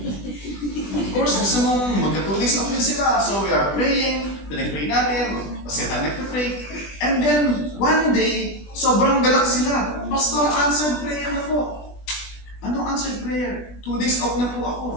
Of course, gusto mong magka 2 days off din sila. So we are praying, pinag-pray natin, kasi tayo nagpa-pray. And then, one day, sobrang galak sila. Pastor, answered prayer na po. Anong answered prayer? 2 days off na po ako.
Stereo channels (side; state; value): right; late; 20 ms